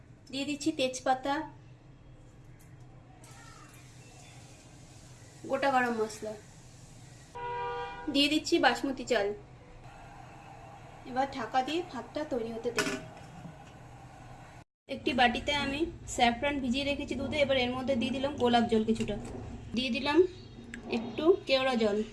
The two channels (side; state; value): both; identical; correlation 1.00